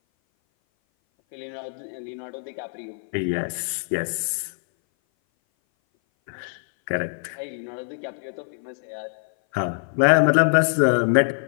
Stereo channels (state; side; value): silent; right; 58 dB below the other